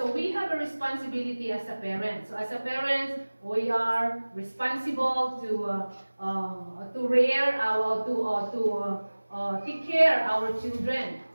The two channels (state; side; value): inverted; both; correlation -1.00